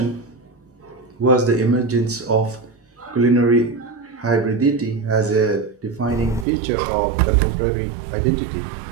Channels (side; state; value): left; drops out; at 6.5 s